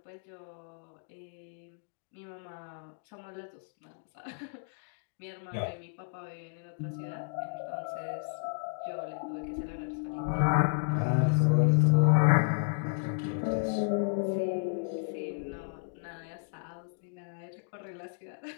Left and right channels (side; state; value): right; silent; digital silence